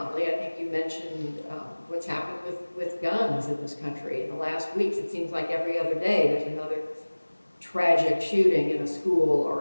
I think you mentioned what's happened with guns in this country in the last weeks. It seems like every other day there's another tragic shooting in a school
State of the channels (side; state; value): both; inverted; correlation -1.00